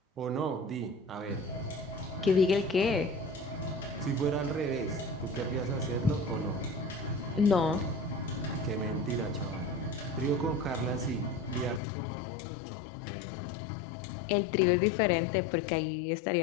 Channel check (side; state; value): right; drops out; at 11.8 s